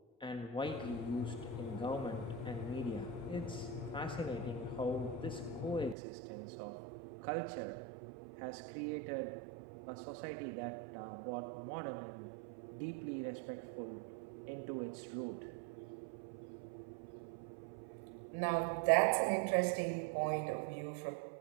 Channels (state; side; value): drops out; left; at 6.0 s